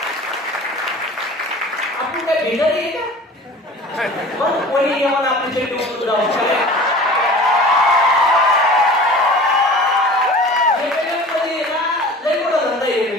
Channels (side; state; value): both; normal; correlation 0.41